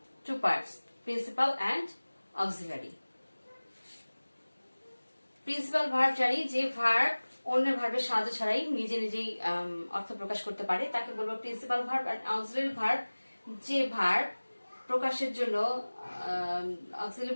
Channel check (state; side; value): inverted; both; correlation -1.00